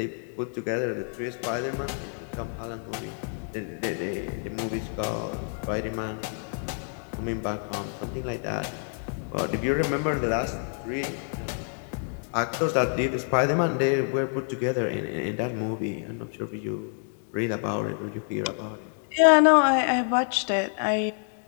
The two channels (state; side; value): silent; right; 60 dB below the other